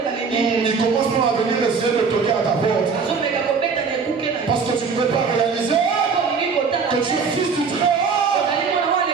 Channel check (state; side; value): quieter; left; 5.4 dB